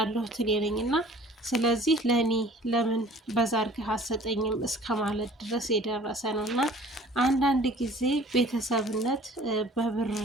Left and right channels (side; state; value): both; normal; correlation 0.50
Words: እኔ ነኝ እና ስለዚህ ለእኔ ለምን በዛ አድርገህ አትሰጠኝም እስከ ማለት ድረስ የደረሰ ነው። እና አንዳንድ ጊዜ ቤተሰብነት በብር